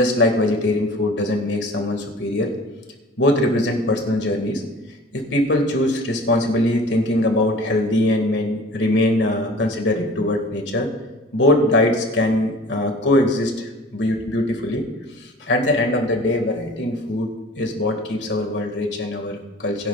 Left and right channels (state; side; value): normal; both; correlation 0.45